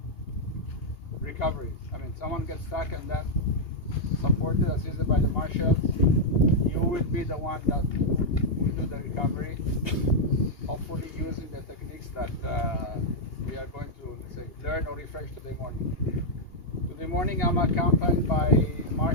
recovery. I mean, someone gets stuck and then supported, assisted by the marshals. You will be the one that will do the recovery, hopefully using the techniques that we are going to, let's say, learn or refresh today morning. Today morning I'm accompanied by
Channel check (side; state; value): right; late; 2.8 ms